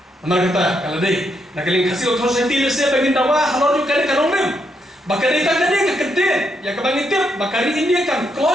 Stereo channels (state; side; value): normal; both; correlation 0.78